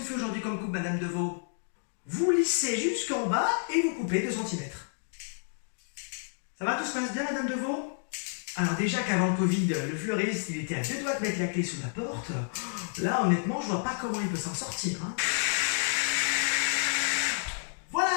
fait aujourd'hui comme coupe, Madame Deveau? Vous lissez jusqu'en bas et vous coupez 2 cm. Ça va, tout se passe bien, Madame Deveau? Alors déjà qu'avant le Covid, le fleuriste, il était à 2 doigts de mettre la clé sous la porte. Là, honnêtement, je vois pas comment il peut s'en sortir, hein.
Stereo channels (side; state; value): right; silent; digital silence